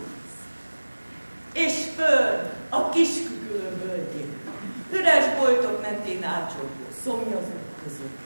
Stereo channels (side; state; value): both; inverted; correlation -1.00